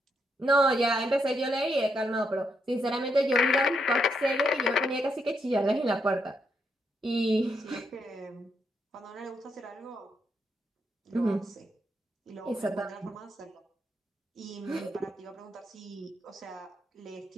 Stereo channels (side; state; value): both; normal; correlation 0.79